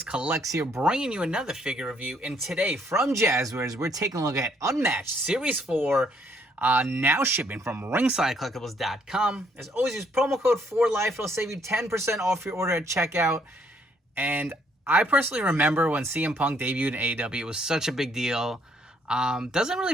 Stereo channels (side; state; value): both; normal; correlation 0.68